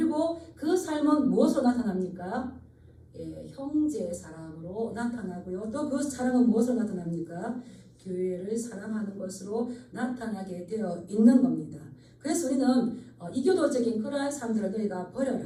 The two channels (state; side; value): identical; both; correlation 1.00